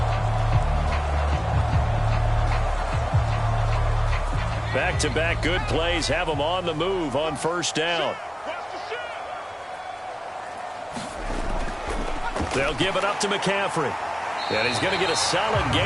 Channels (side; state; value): both; identical; correlation 1.00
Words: Back-to-back good plays have him on the move on first down. They'll give it up to McCaffrey. And he's going to get a solid